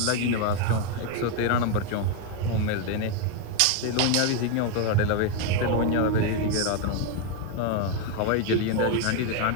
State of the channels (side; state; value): both; different; correlation 0.01